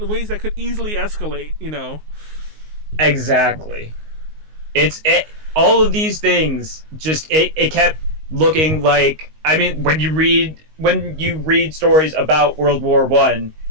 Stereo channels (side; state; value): left; late; 19 ms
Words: ways that could easily escalate. Exactly. All of these things just it kept looking like, I mean, when you read stories about World War I,